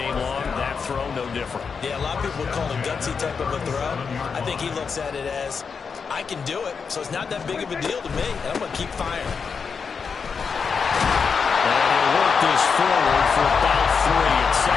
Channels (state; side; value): quieter; right; 5.7 dB